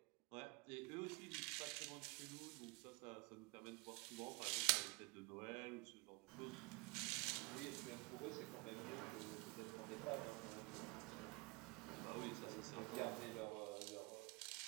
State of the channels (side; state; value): left; quieter; 27.0 dB